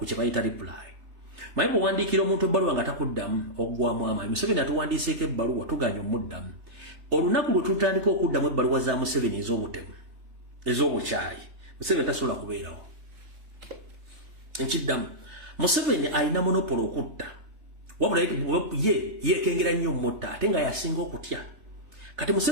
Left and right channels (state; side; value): late; left; 3.3 ms